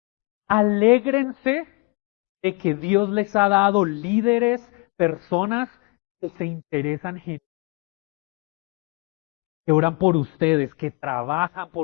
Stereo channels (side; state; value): right; quieter; 27.7 dB